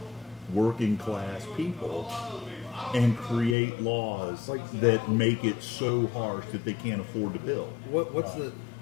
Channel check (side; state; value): right; drops out; at 3.6 s